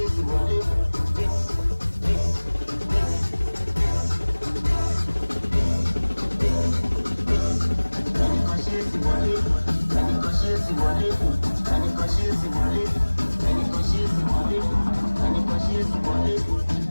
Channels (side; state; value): both; inverted; correlation -1.00